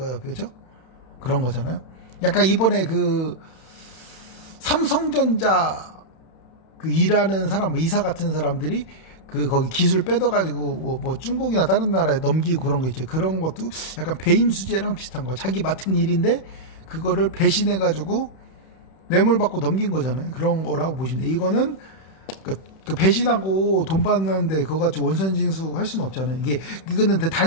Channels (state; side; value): late; right; 31 ms